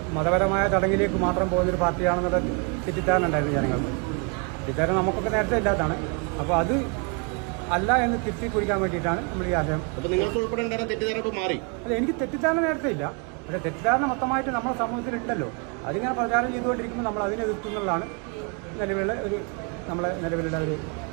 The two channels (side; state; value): left; quieter; 34.6 dB